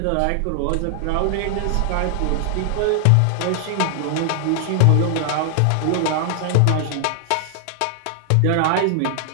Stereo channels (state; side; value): different; both; correlation 0.00